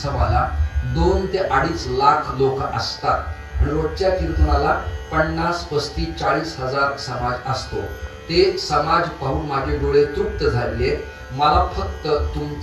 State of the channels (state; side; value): identical; both; correlation 1.00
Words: 2 ते 2.5 लाख लोक असतात आणि रोजच्या कीर्तनाला 50, 35, 40 हजार समाज असतो. ते समाज पाहून माझे डोळे तृप्त झाले. मला फक्त